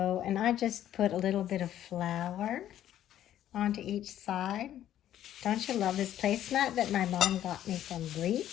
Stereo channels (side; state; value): right; quieter; 11.7 dB